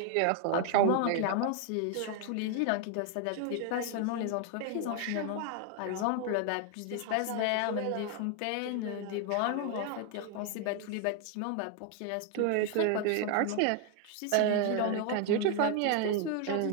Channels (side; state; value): both; different; correlation 0.01